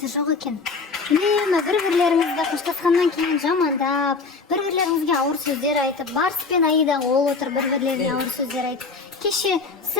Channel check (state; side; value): quieter; right; 4.4 dB